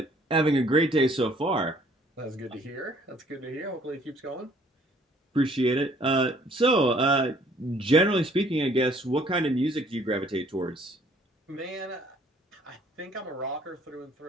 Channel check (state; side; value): normal; both; correlation 0.60